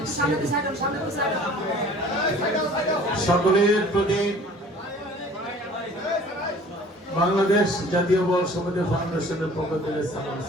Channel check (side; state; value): both; normal; correlation 0.49